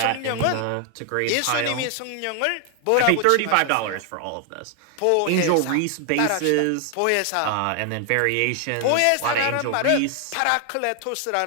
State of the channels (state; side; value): different; both; correlation 0.00